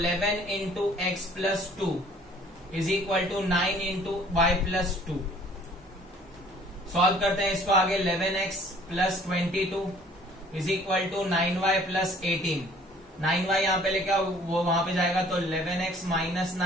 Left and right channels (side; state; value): both; normal; correlation 0.55